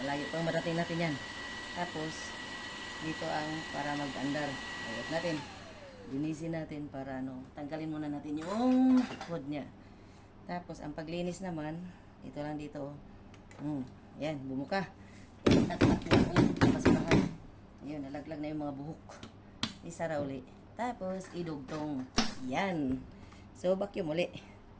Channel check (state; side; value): identical; both; correlation 1.00